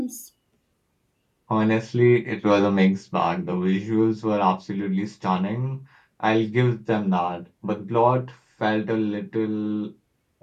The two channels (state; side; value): identical; both; correlation 1.00